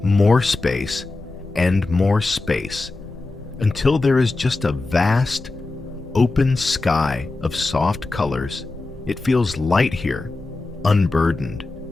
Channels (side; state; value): right; quieter; 3.3 dB